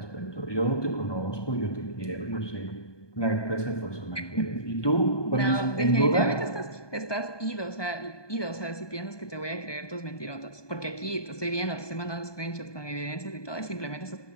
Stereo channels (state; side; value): late; right; 1.2 ms